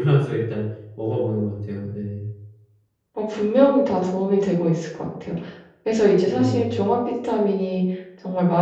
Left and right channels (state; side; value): identical; both; correlation 1.00